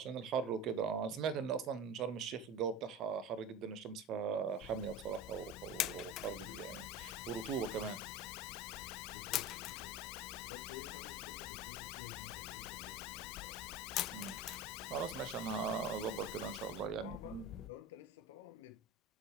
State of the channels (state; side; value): normal; both; correlation 0.31